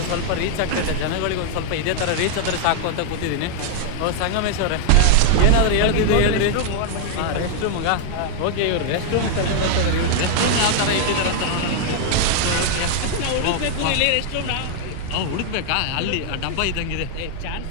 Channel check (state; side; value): different; both; correlation 0.00